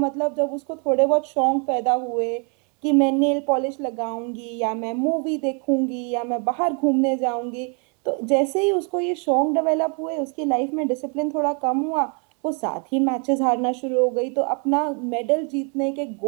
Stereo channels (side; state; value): left; quieter; 37.5 dB